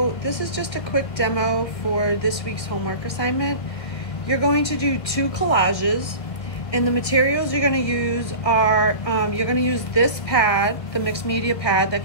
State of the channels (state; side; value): late; right; 1.5 ms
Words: this is just a quick demo for this week's homework assignment. You're going to do 2 collages, and the materials you're going to use are, you're going to use this pad, the mixed media pad that